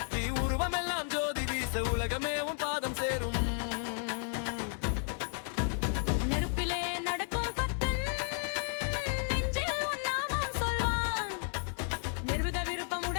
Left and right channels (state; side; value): silent; right; 56 dB below the other